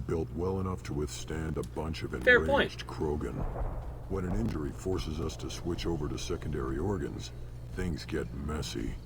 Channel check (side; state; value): both; identical; correlation 1.00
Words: well enough to withstand a bunch of Fair point. enraged Krogan. When an injury forces us to switch over to secondary organs, things get messy.